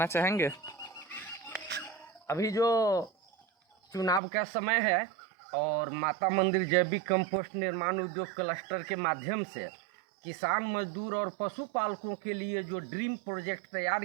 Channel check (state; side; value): drops out; left; at 4.2 s